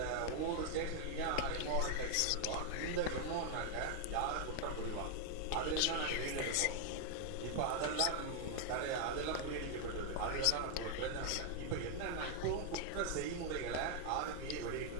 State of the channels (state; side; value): different; both; correlation 0.00